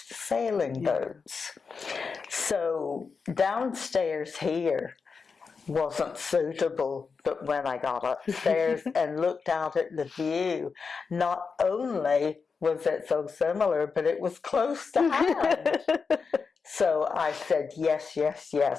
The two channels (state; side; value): quieter; right; 5.2 dB